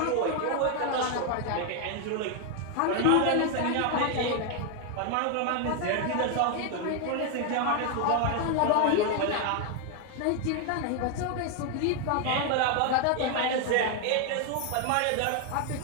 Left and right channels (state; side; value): different; both; correlation 0.01